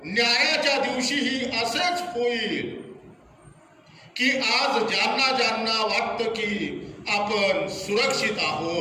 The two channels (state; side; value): identical; both; correlation 1.00